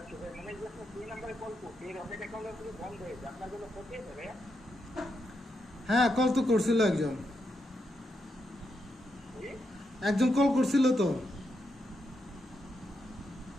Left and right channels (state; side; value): normal; both; correlation 0.83